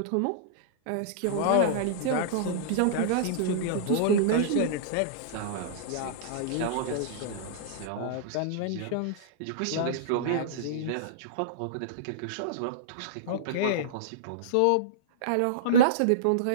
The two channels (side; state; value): both; different; correlation -0.03